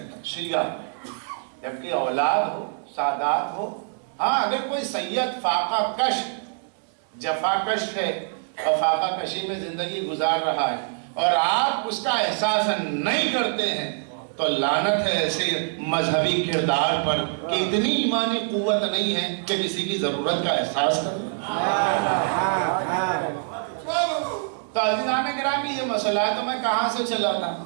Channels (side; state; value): left; silent; digital silence